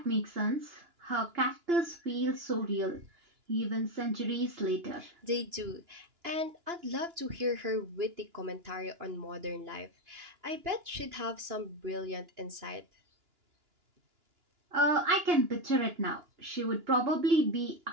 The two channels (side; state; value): left; late; 2.9 ms